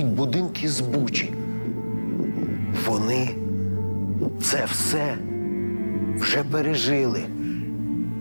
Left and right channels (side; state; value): both; inverted; correlation -1.00